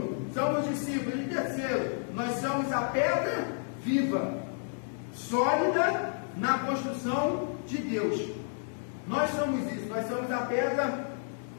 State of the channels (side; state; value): right; silent; digital silence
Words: somos discípulos. E terceiro, nós somos a pedra viva, sólida na construção de Deus. Nós somos isso, nós somos a pedra